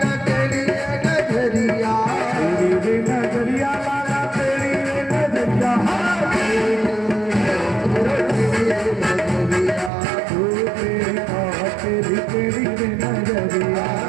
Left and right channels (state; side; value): drops out; left; at 9.9 s